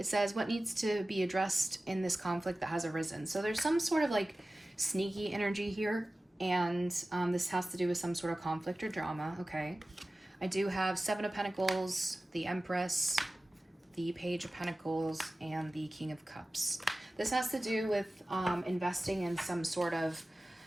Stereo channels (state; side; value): normal; both; correlation 0.96